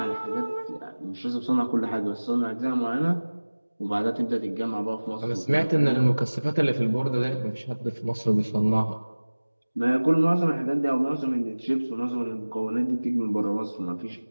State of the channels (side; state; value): both; inverted; correlation -1.00